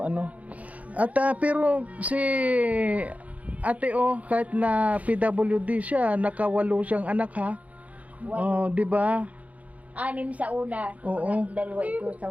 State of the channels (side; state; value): left; late; 0.069 ms